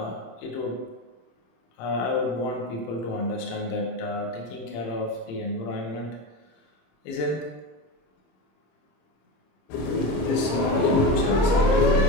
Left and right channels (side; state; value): right; late; 26 ms